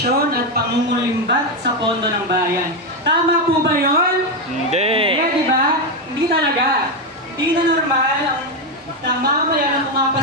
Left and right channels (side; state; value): both; normal; correlation 0.08